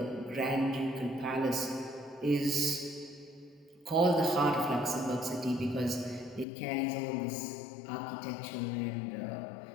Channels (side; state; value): right; drops out; at 6.5 s